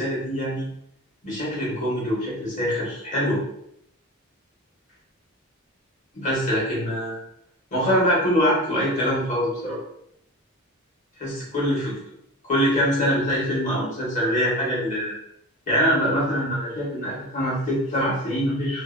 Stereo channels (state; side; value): normal; both; correlation 0.31